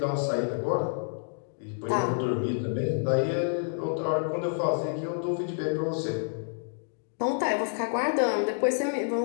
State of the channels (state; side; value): silent; right; digital silence